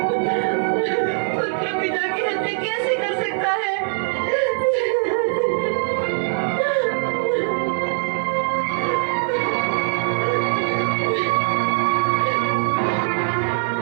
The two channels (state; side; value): silent; left; digital silence